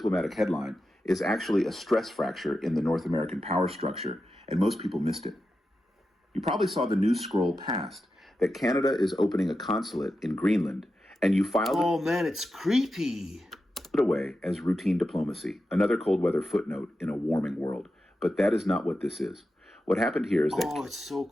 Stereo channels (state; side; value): normal; both; correlation 0.90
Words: headline is actually a stress fracture in the North American power structure, and most people missed it. You probably saw the news scroll past that Canada is opening a consulate in Greenland, and you filed Oh man, it's creepy. it away as routine diplomacy, another cold weather footnote in a warming world. But that is not what this is. What happened here is that... Oh, it's so